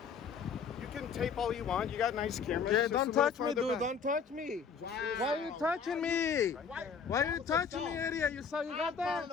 You can tape all you want. You got nice cameras. Yeah, Just don't a little touch me, farther dude. back. Don't touch me. Wow. Why are you touching me? Why Why are you touching me, idiot? You saw you got I'm calling that?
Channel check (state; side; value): quieter; right; 6.2 dB